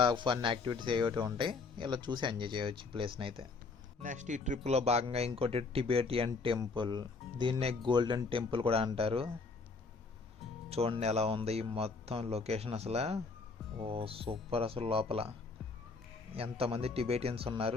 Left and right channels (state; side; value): quieter; right; 4.2 dB